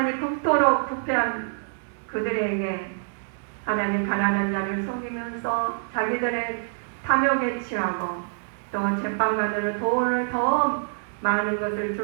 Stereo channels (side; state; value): left; silent; digital silence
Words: 극도로 부패한 그들에게 하나님 가난한 자를 속이면서 자기들의 탐욕에 취하고 또 제빵관으로 돈을 더 많은 것을